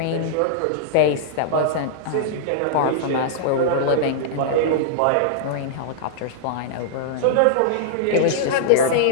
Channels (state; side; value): different; both; correlation -0.02